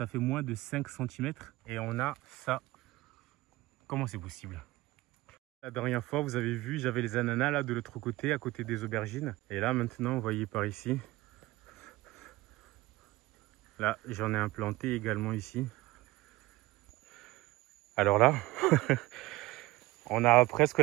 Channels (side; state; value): left; quieter; 19.5 dB